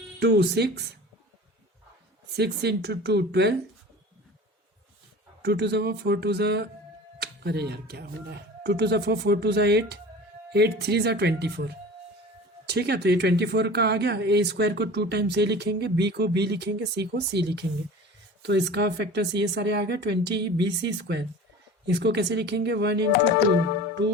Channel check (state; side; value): normal; both; correlation 0.39